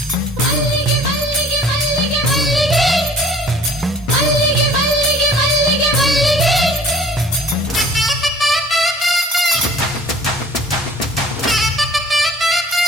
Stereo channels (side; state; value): both; normal; correlation 0.50